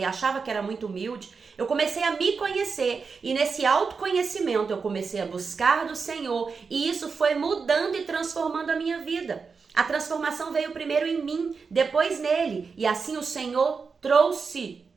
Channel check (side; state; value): left; quieter; 5.1 dB